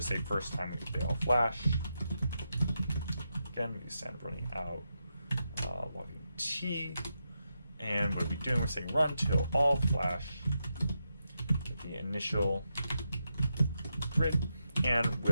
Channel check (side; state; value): both; inverted; correlation -0.86